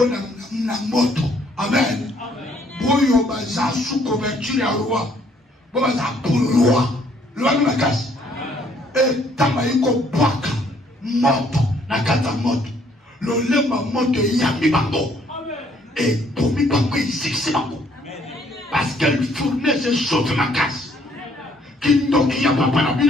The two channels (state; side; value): normal; both; correlation 0.65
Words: na moto. Amen. Boyo baza sous couverture ya roi. Bo baza pour roi. Loi na kasi. Et tamaiko bwaka moto na kata moto. L'olema moto yami bango. Et pour mi bango ici c'est bango. Parce qu'elle fournait ses choses ma casse. Qui n'ont a pas la